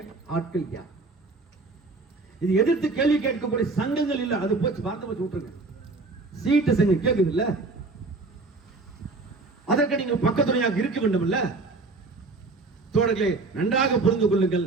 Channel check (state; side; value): quieter; left; 3.6 dB